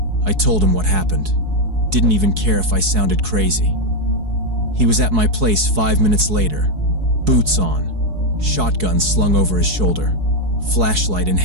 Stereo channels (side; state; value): left; late; 4.7 ms